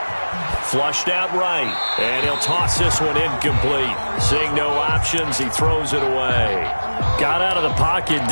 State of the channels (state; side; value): inverted; both; correlation -1.00